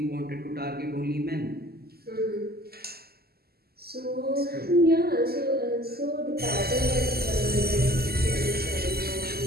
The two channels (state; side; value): late; left; 0.46 ms